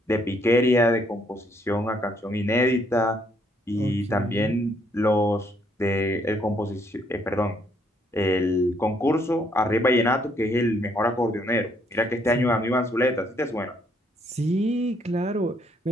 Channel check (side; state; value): both; normal; correlation 0.69